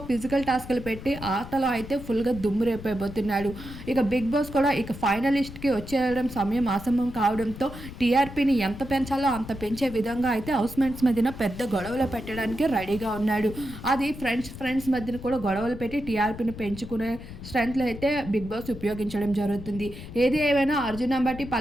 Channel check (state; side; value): noise; left; rumble, 12 dB below the sound